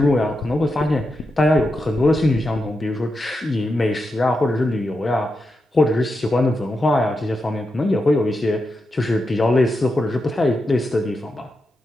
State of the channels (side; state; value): both; normal; correlation 0.87